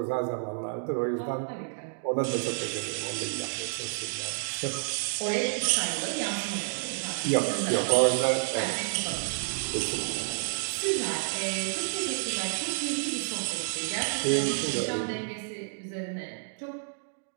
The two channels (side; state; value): left; silent; digital silence